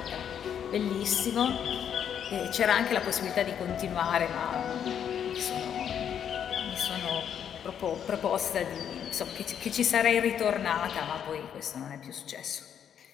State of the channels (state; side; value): quieter; right; 8.7 dB